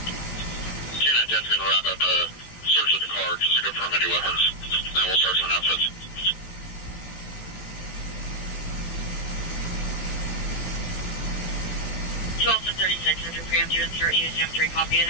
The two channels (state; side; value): late; right; 18 ms